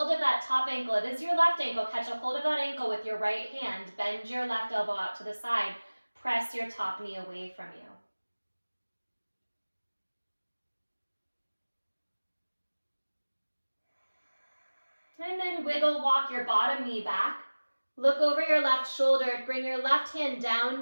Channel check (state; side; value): inverted; both; correlation -1.00